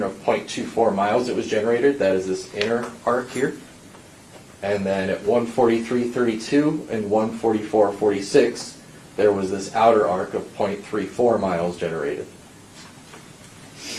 of 0.24 miles that was generated. That is this inner arc here. And then at 1:43:32 and 1:44:46, there was this outer arc of 0.34 miles generated.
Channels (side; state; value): both; identical; correlation 1.00